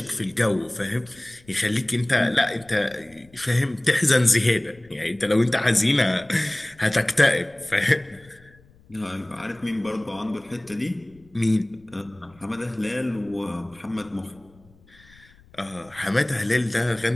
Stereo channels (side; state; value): left; noise; rumble, 28 dB below the sound